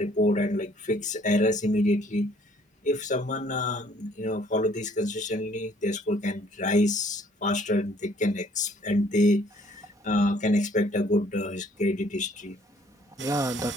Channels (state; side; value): normal; both; correlation 0.60